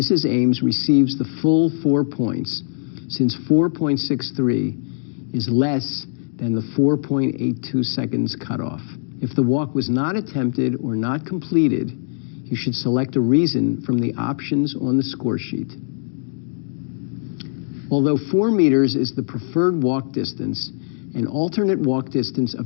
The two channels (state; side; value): silent; right; digital silence